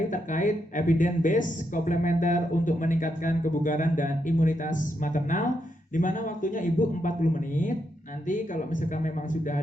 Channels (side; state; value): both; normal; correlation 0.81